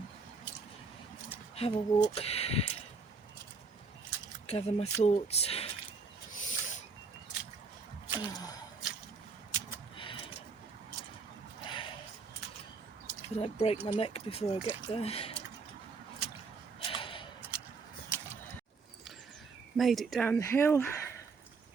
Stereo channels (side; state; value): left; quieter; 4.5 dB